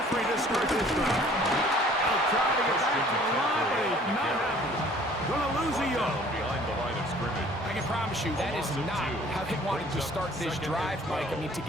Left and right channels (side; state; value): both; normal; correlation 0.54